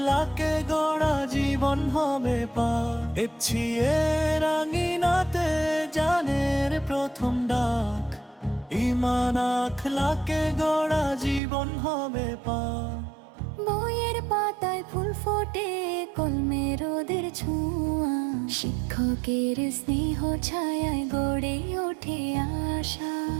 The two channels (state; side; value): drops out; left; at 11.4 s